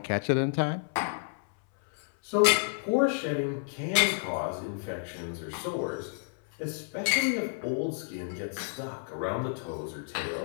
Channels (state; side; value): silent; right; 58 dB below the other